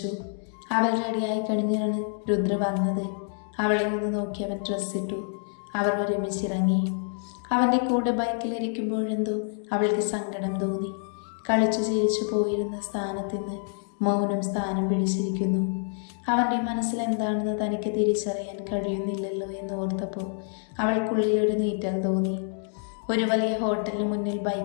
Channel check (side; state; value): right; silent; 60 dB below the other